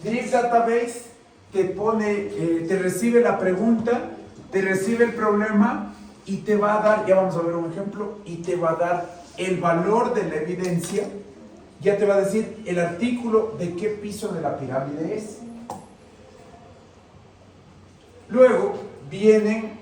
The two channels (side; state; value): both; identical; correlation 1.00